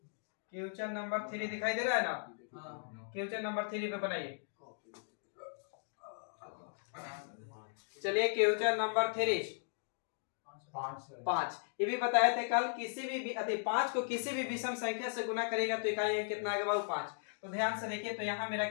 क्वेश्चन नंबर 3 दिखाई दे रहा है ना। क्वेश्चन नंबर 3 पे बनाइए। चलिए क्वेश्चन नंबर 3 5। ये भी बताए थे कल, किसी भी 5 को किसी भी विषम संख्या से गुना करेगा तो इकाई अंक कितना आएगा बाबू 5। तो ध्यान से देखिए, तो यहाँ मेरा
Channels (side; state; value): right; silent; digital silence